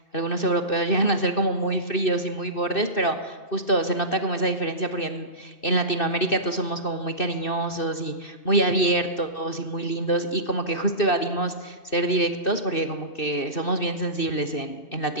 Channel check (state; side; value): late; right; 2.6 ms